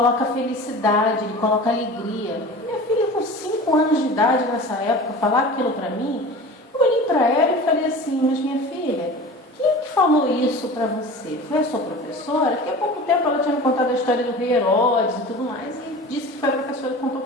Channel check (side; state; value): both; normal; correlation 0.37